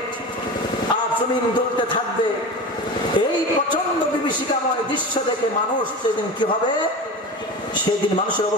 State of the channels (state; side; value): normal; both; correlation 0.29